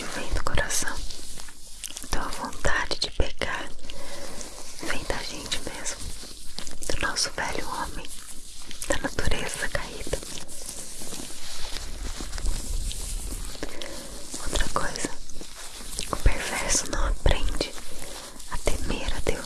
vem do coração. Então a vontade de pecar vem da gente mesmo, do nosso velho homem, da natureza caída. Outra coisa, o perverso não aprende a temer a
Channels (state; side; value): identical; both; correlation 1.00